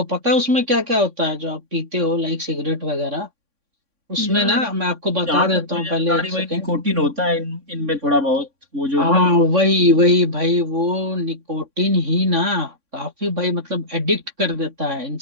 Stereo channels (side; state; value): left; late; 3.6 ms